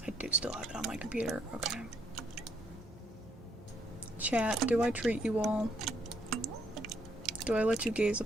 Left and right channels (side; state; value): both; normal; correlation 0.72